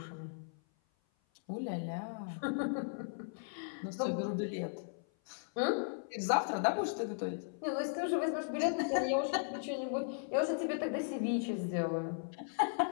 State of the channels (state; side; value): silent; right; 53 dB below the other